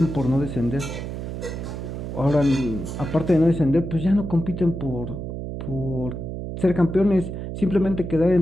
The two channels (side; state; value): right; noise; hum, 6 dB below the sound